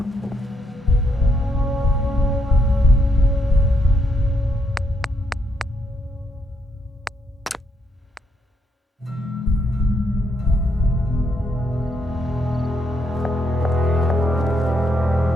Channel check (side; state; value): both; normal; correlation 0.76